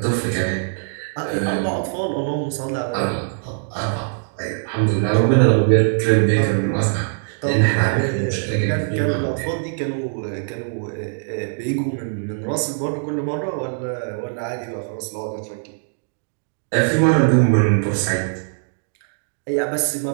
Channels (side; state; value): left; silent; digital silence